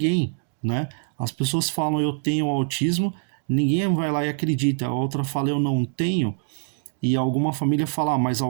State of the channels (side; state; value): left; silent; digital silence